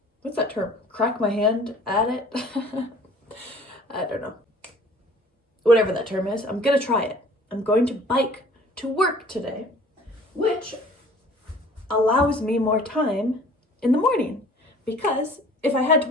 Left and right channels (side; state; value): both; normal; correlation 0.50